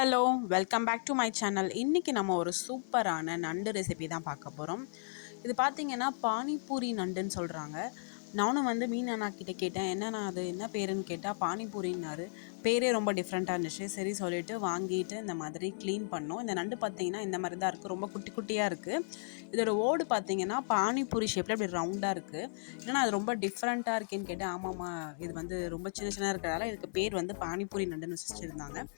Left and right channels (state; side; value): silent; right; 55 dB below the other